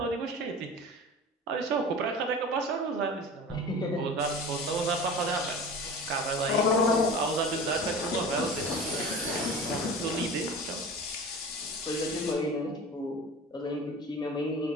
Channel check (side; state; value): both; normal; correlation 0.36